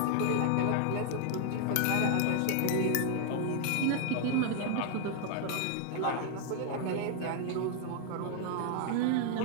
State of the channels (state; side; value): different; both; correlation 0.00